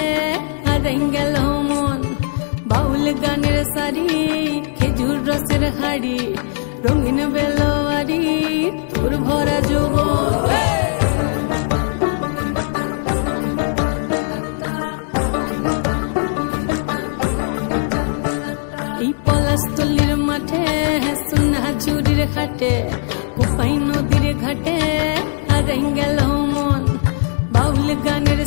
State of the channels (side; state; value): right; silent; digital silence